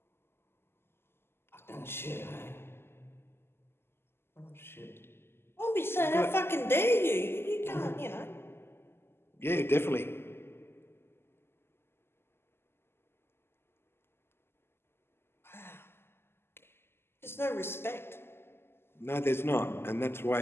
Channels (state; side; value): late; right; 0.12 ms